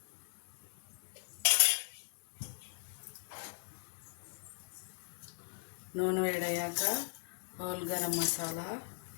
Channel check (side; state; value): right; silent; digital silence